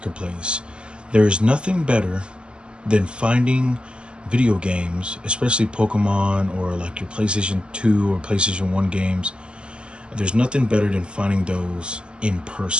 There is nothing better than finding video games, especially Pokemon or like your PlayStation 2 or PlayStation 1 games. There's nothing better than finding those in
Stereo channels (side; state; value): left; late; 0.051 ms